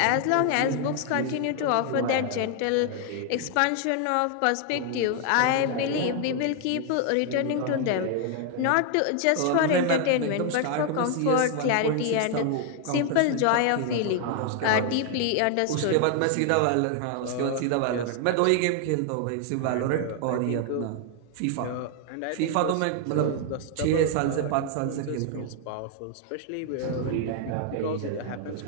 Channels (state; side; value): different; both; correlation 0.00